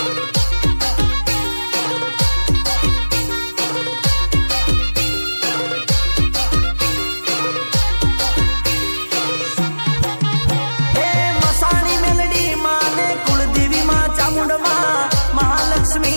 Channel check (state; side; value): inverted; both; correlation -1.00